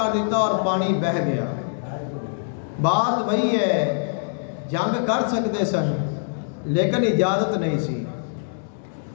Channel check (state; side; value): silent; right; digital silence